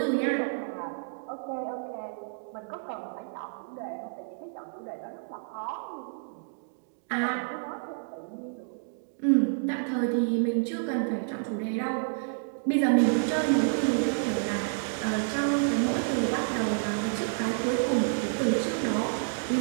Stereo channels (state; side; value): silent; left; digital silence